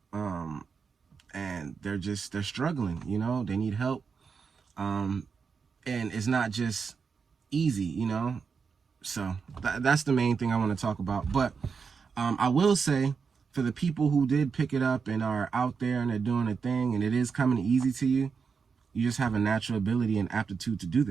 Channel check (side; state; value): left; quieter; 5.6 dB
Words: and they're struggling. You know, they need help, and it's not just easy, you know. So that's the main thing I want to talk about. But I will say, for the people who did pick it up and are out there and they're doing a thing and it is coming easy to you, you just have a natural ability and aptitude to do